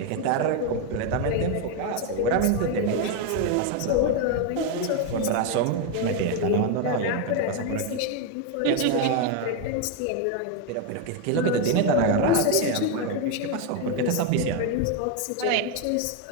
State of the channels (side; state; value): both; different; correlation 0.02